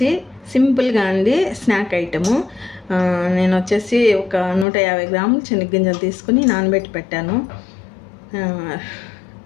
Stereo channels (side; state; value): right; drops out; at 4.7 s